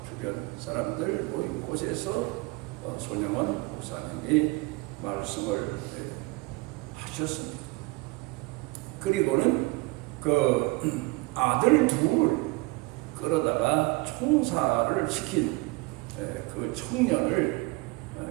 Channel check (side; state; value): left; quieter; 23.9 dB